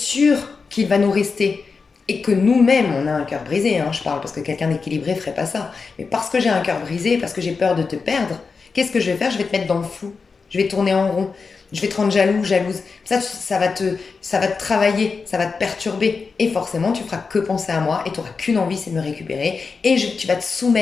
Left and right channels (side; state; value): right; quieter; 4.8 dB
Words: qu'il va nous rester, et que nous-mêmes, on a un cœur brisé, hein, je parle parce que quelqu'un d'équilibré ferait pas ça, mais parce que j'ai un cœur brisé, parce que j'ai peur de te perdre, qu'est-ce que je vais faire? Je vais te mettre dans le flou, je vais tourner en rond, je vais te rendre jaloux, jalouse. Ça va te travailler, ça va te perturber, et forcément, tu feras que penser à moi, et tu n'auras qu'une envie, c'est de me récupérer, et tu vas te